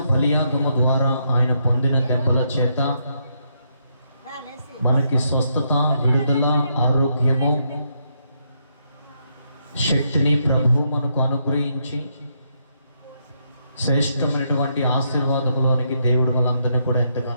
బలియాగము ద్వారా ఆయన పొందిన దెబ్బల చేత మనకి స్వస్థత, విడుదల, ఆరోగ్యము, శక్తిని ప్రభు మనకు అనుగ్రహించి శ్రేష్టమైనటువంటి ఆశీర్వాదములోనికి దేవుడు మనందరినీ కూడా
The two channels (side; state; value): both; inverted; correlation -0.77